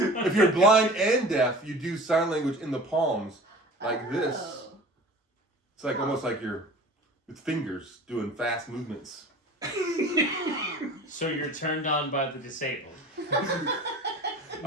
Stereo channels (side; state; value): both; normal; correlation 0.41